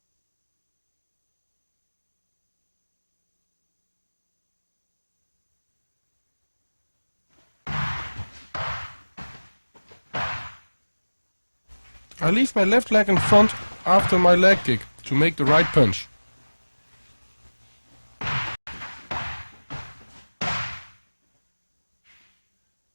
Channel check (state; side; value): inverted; both; correlation -1.00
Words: I leave my left leg in front after my leg kick to make the right punch.